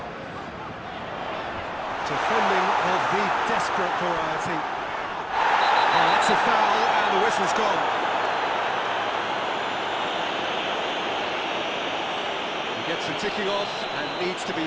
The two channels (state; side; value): identical; both; correlation 1.00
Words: Defending of the desperate variety. Oh, that's a foul, and the whistle's gone. He gets the ticking off and needs to be